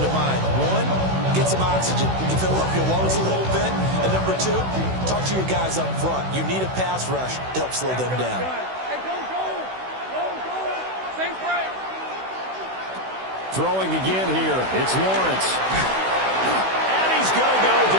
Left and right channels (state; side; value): late; left; 16 ms